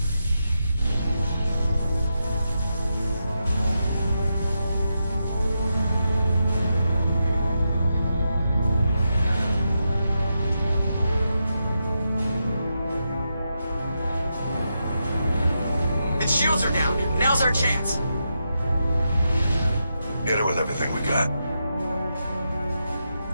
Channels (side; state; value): both; inverted; correlation -0.86